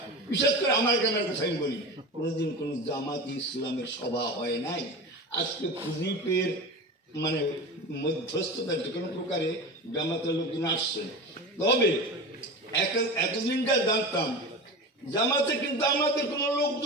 বিশেষ করে আমার গ্রামের কথা আমি বলি, কোনোদিন কোনো জামাত ইসলামের সভা হয় নাই। আজকে খুজিপের মানে মধ্যস্থতার যে কোনো প্রকারে জামাতের লোকজন আসছে। তবে এতদিনটা জানতাম জামাতে কিন্তু আমাদের কোনো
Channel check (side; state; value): both; normal; correlation 0.29